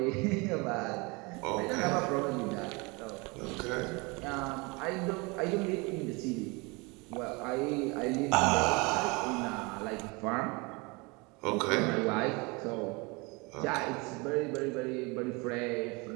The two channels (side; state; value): left; quieter; 27.4 dB